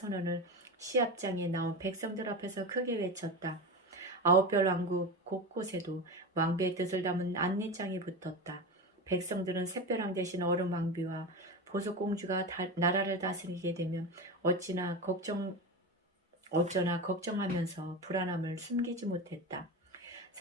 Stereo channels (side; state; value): both; normal; correlation 0.22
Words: 시합장에 나온 백성들 앞에서 크게 외쳤다. 9별 왕국 곳곳에도 왕비의 뜻을 담은 안내장이 붙었다. 백성들은 샛벼랑 대신 얼음왕비와 보석공주가 나라를 다스리게 되면 어쩌나 걱정하면서 불안함을 숨기지 못했다.